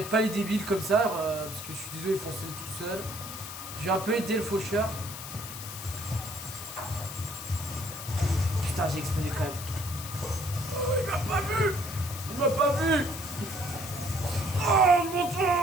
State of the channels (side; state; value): left; noise; hiss, 10 dB below the sound